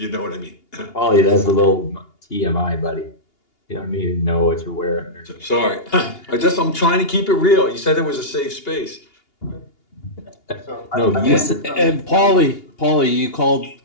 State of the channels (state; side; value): late; right; 2.8 ms